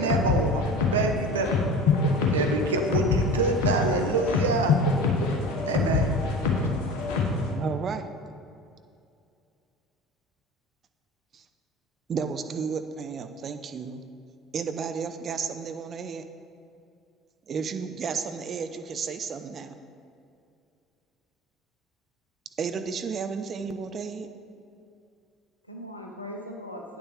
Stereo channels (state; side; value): normal; both; correlation 0.36